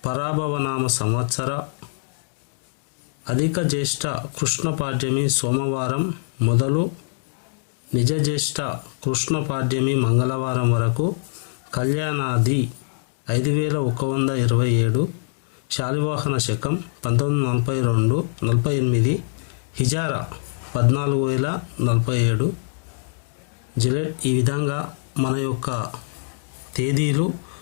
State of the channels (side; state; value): right; silent; digital silence